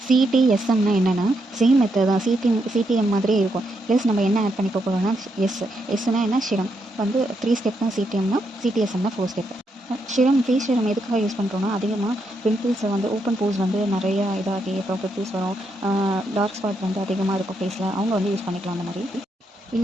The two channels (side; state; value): both; normal; correlation 0.80